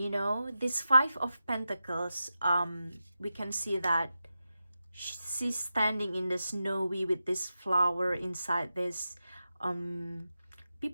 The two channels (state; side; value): inverted; both; correlation -0.91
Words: know, this 5 of Pentacles, we can see that she's standing in the snowy with this flower inside this.